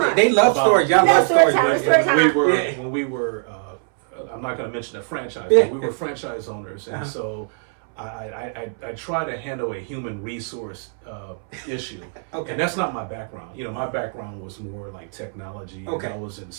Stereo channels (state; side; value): silent; left; 64 dB below the other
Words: They love stories. Y'all love stories. When we were, I'm not going to mention the franchise, but we were franchise owners, and so I try to handle a human resource issue. Okay. And that's not my background. My background was more like technology. Okay. I was in